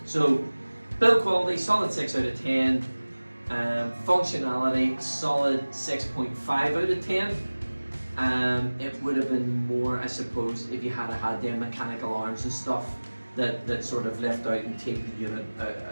so build quality, solid 6 out of 10. Functionality, solid 6.5 out of 10. It would have been more, I suppose, if you had had them mechanical arms and stuff that sort of lift out and take the unit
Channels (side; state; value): both; inverted; correlation -1.00